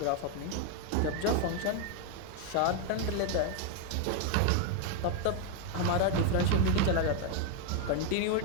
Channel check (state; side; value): different; both; correlation 0.01